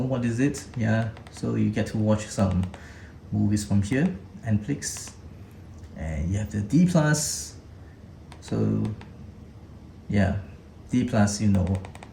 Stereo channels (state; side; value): identical; both; correlation 1.00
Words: what is it, yeah. So you get to watch some movies from here, Netflix. And you have the D+. So yeah, D+,